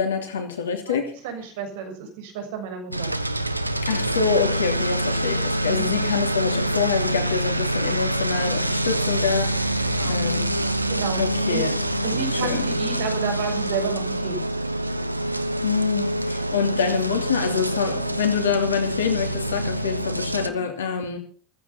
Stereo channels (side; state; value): both; inverted; correlation -0.65